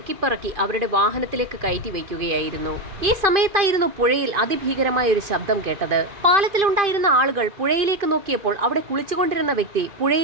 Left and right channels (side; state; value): left; late; 2.5 ms